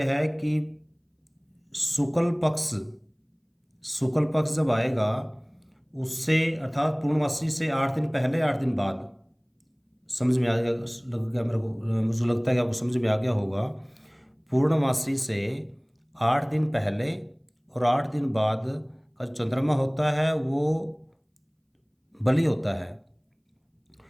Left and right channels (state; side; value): identical; both; correlation 1.00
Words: है कि शुक्ल पक्ष जब आएगा उससे अर्थात पूर्णमासी से 8 दिन पहले 8 दिन बाद, समझ में आ गया लग गया मेरे को, मुझे लगता है कि आपको समझ में आ गया होगा। पूर्णमासी से 8 दिन पहले और 8 दिन बाद का जो चंद्रमा होता है वो बलि होता है।